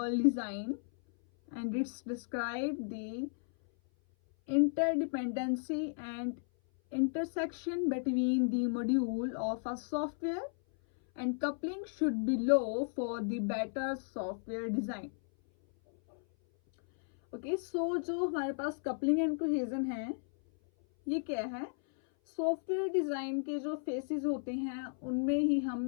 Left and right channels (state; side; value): silent; right; 55 dB below the other